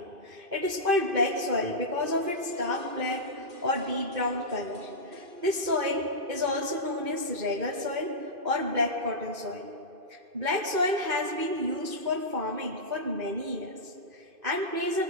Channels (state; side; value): late; left; 2.5 ms